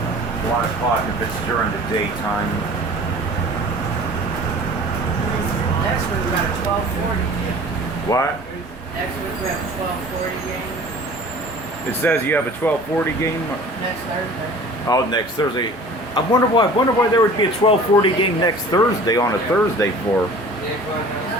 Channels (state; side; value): normal; both; correlation 0.44